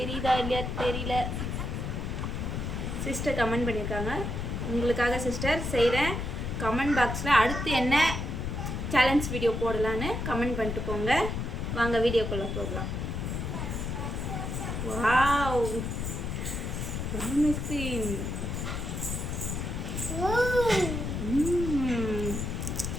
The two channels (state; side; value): noise; left; rumble, 3 dB below the sound